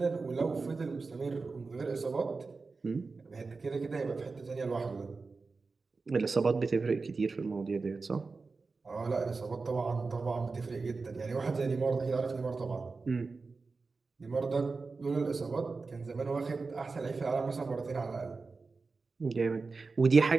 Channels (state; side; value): quieter; left; 4.2 dB